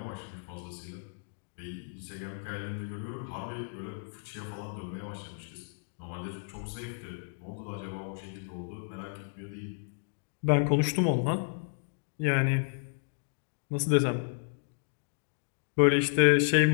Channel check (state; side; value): silent; right; digital silence